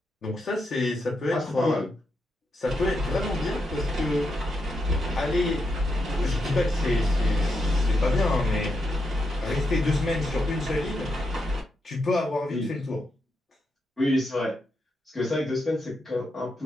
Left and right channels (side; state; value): both; normal; correlation 0.83